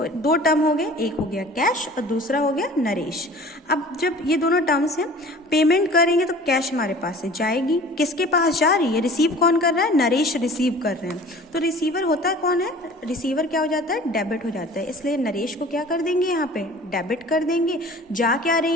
दो टर्म हो गए, एक हो गया कैश और दूसरा हो गया नरेश। अब जब ये दोनों टर्म्स हैं, पेमेंट करेंगे तो कैश हमारे पास से जाएगी, किसके पास जा रही है, रिसीव कौन कर रहा है, नरेश रिसीव कर रहे हैं। तो रिसीवर होता है कौन है, रिसीवर क्या हो जाता है, डेबिट हो जाता है, इसलिए नरेश को क्या कर देंगे, यहाँ पे डेबिट कर देंगे। जा क्या रही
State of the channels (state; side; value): normal; both; correlation 0.45